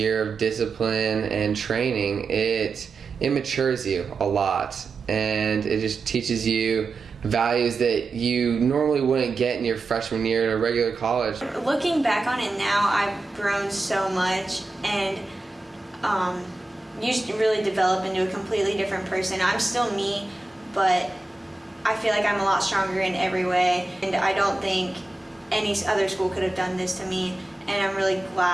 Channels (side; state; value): left; quieter; 3.3 dB